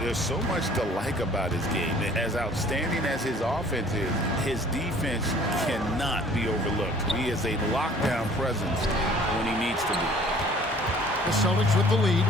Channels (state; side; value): normal; both; correlation 0.53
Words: so much to like about his game. As outstanding as his offense is, his defense cannot be overlooked. He is a lockdown presence when he needs to be. The Celtics with the lead.